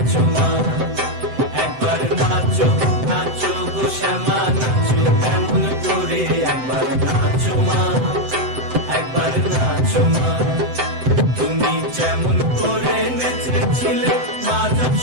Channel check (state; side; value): late; left; 7.8 ms